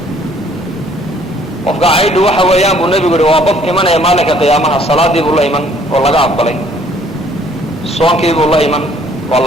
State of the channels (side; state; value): both; normal; correlation 0.60